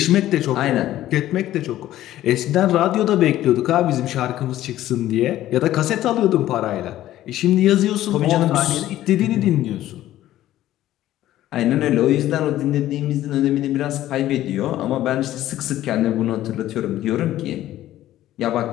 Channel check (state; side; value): quieter; right; 13.8 dB